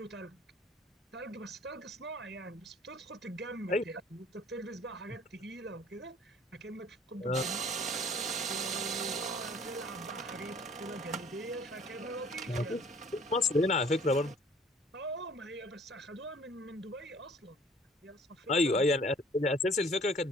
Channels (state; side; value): normal; both; correlation 0.54